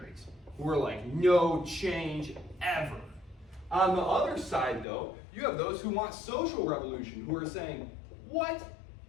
who are like, no change ever. On the other side, though, you have those who want social revolution, who are saying, what?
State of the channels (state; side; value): drops out; right; at 4.9 s